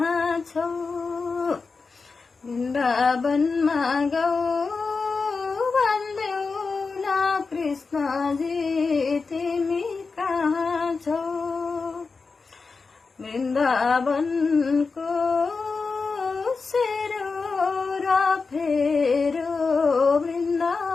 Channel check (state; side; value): quieter; right; 4.5 dB